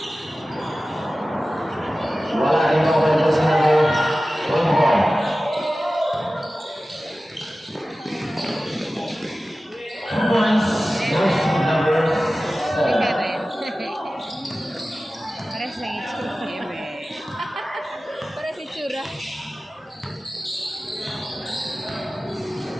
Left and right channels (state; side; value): normal; both; correlation 0.96